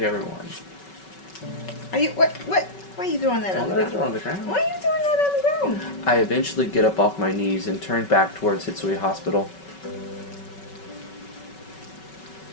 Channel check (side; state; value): right; late; 5.3 ms